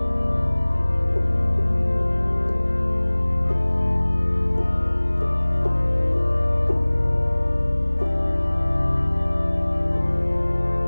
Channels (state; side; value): inverted; both; correlation -1.00